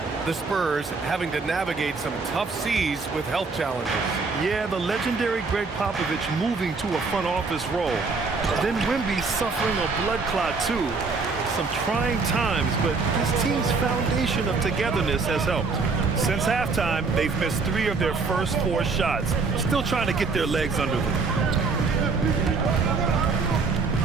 the Spurs having to navigate some tough seas with health challenges. Yeah, the legendary Greg Popovich moving to a front office role. Then Wemby suffering a blood clot too. Some trying times, but this team's foundation of togetherness has helped. Since halftime, they've missed 3 of their first 4 shots. Still trying to get their legs under them.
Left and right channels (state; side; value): quieter; left; 4.3 dB